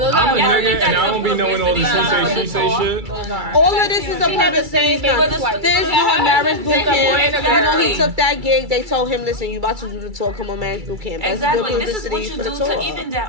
those I'm are a nigga and I don't be knowing all this she say shit. All of this is a purpose thing. Fizz doing Marriage Boot Camp. You know he took that gig. They told him, listen, you about to do the tour. Come on, Marriage Boot Camp. exactly. This is what you do to even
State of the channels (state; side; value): late; left; 2.3 ms